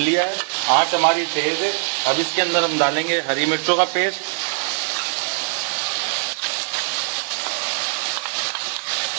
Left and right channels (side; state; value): left; silent; digital silence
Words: है। आंच हमारी तेज है। अब इसके अंदर हम डालेंगे हरी मिर्चों का पेस्ट,